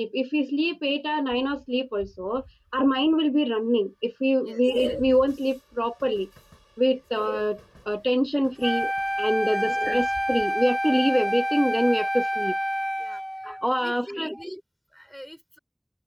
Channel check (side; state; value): both; identical; correlation 1.00